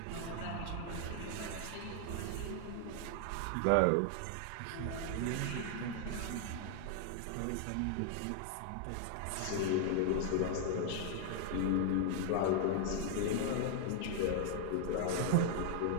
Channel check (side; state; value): both; different; correlation 0.00